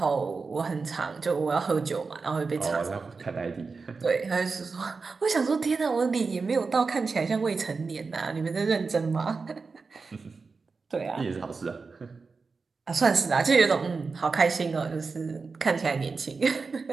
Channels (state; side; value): quieter; left; 4.5 dB